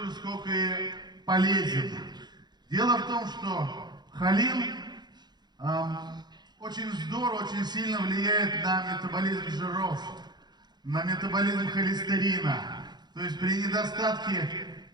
же, сколько и полезен. Дело в том, что холин очень здорово, очень сильно влияет на метаболизм жиров, на метаболизм холестерина. То есть при недостатке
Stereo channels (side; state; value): left; late; 0.21 ms